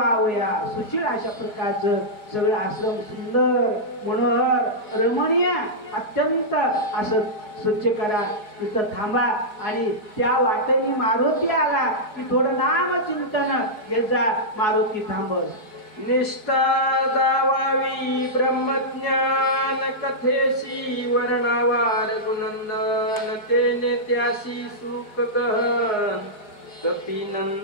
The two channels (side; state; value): right; late; 4.8 ms